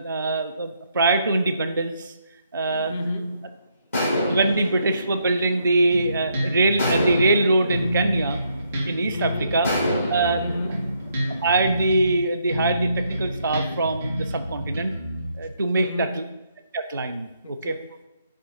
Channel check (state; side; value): inverted; both; correlation -0.74